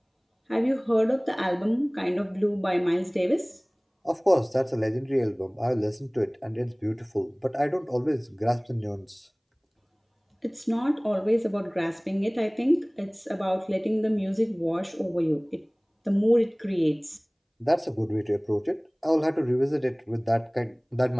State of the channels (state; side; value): identical; both; correlation 1.00